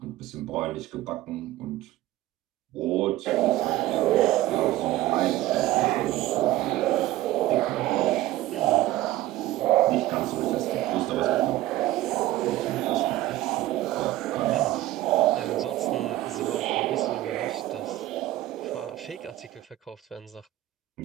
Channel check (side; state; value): left; quieter; 15.4 dB